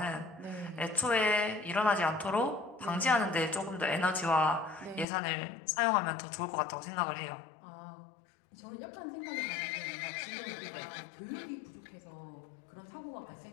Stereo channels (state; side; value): drops out; right; at 5.1 s